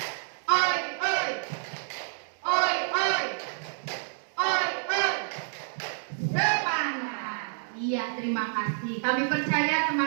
ini. Kami percaya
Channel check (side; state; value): left; silent; digital silence